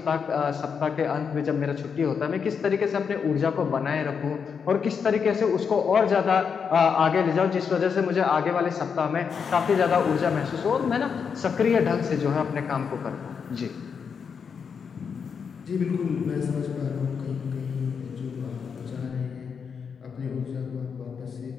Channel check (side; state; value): right; quieter; 6.4 dB